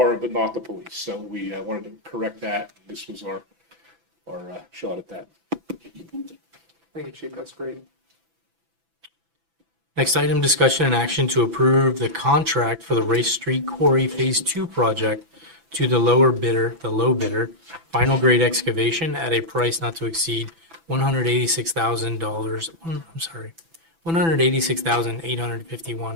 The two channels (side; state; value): left; late; 6.0 ms